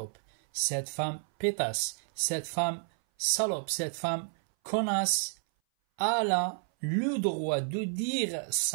cette femme pétasse, cette femme salope, cette femme connasse, elle a le droit de dire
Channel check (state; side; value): silent; left; 57 dB below the other